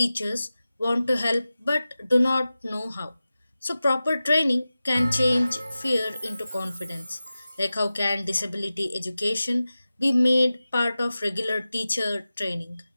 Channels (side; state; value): both; inverted; correlation -0.95